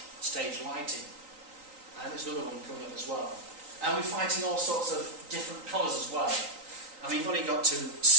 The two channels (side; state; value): left; late; 3.9 ms